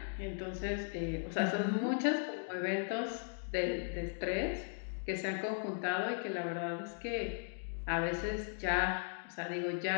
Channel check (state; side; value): silent; right; digital silence